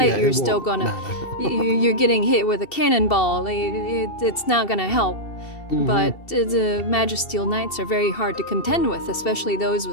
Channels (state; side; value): late; right; 2.7 ms